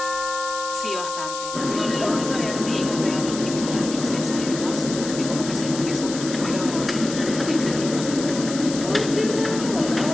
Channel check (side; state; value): left; noise; hiss, 9 dB below the sound